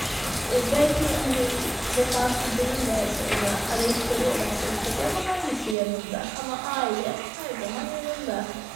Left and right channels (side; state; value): left; drops out; at 5.8 s